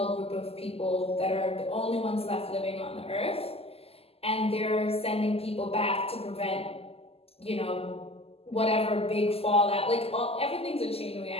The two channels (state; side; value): late; right; 0.29 ms